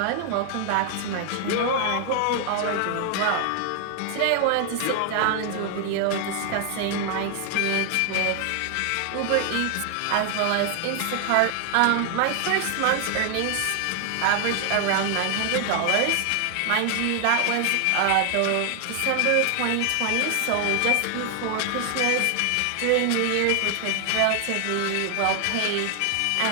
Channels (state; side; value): different; both; correlation 0.00